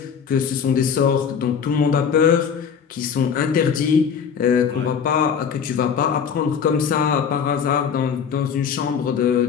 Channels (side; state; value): right; quieter; 7.1 dB